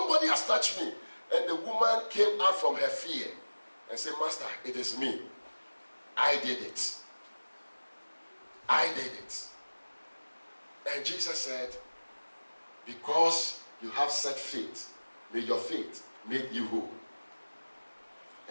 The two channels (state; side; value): inverted; both; correlation -1.00